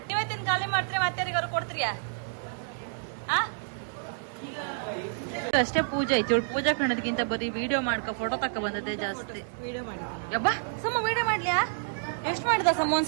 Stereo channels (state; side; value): silent; left; digital silence